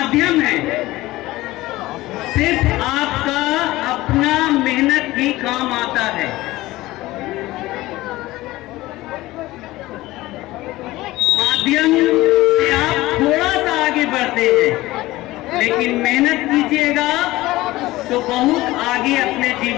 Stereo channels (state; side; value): quieter; right; 18.1 dB